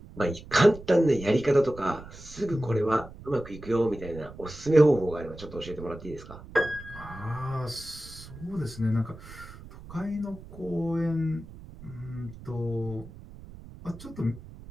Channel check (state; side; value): noise; right; rumble, 16 dB below the sound